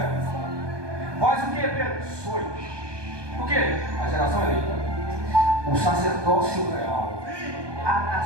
vós o que, Pedro? Sois o que? A geração eleita, o sacerdócio real, a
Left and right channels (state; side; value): late; left; 1.2 ms